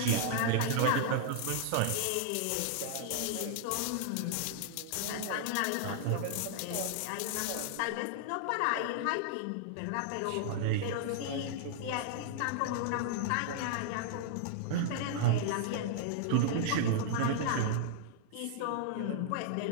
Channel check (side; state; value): both; different; correlation -0.01